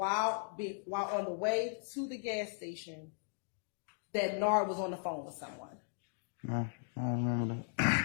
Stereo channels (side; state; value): right; silent; digital silence